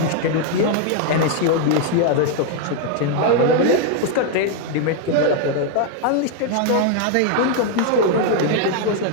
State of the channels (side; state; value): both; different; correlation 0.00